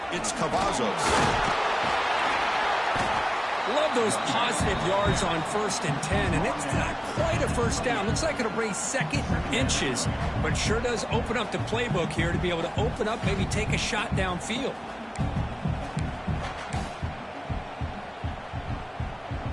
it's Cavazos. Love those positive yards on 1st and 10, and it's not quite a first down. Looks like it'll bring 2nd inches, but sure does open up the playbook here to be able to open up, maybe take a shot downfield.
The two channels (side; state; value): both; identical; correlation 1.00